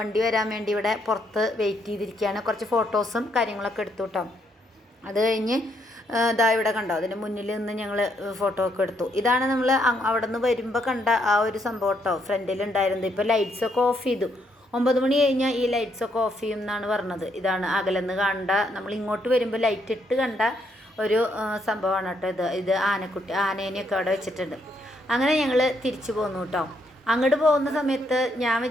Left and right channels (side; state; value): both; normal; correlation 0.74